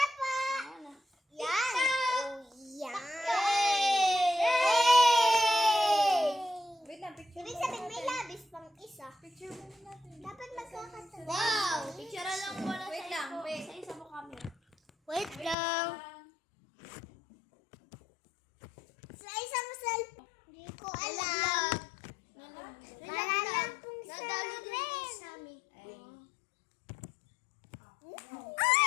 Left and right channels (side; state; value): right; drops out; at 15.6 s